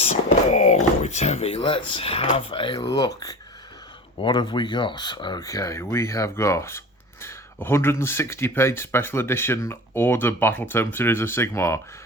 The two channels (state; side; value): normal; both; correlation 0.35